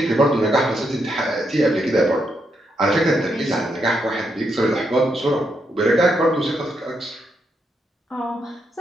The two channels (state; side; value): normal; both; correlation 0.80